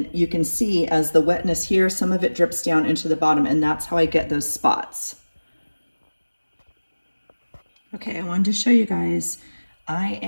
you can see as the wetness here, some of it drips down into the bottom, and that's how I get those spots. Okay, I wanted to show you guys. I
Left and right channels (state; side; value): inverted; both; correlation -1.00